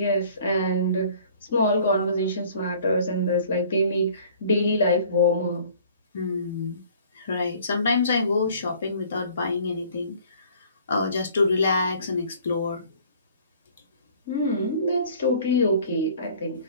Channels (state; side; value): inverted; both; correlation -0.52